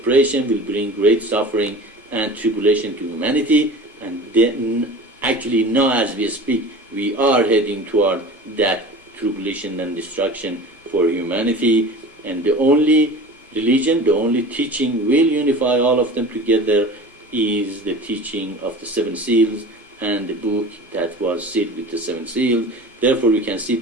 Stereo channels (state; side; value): normal; both; correlation 0.38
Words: will bring great suffering and tribulation to humanity. And then, actually now as we speak, we are heading toward that tribulation and destruction for humanity. And the only religion, the only teaching will unify all of them together is the teaching of the seven seals and the book that was sealed with the seven seals. Therefore, we can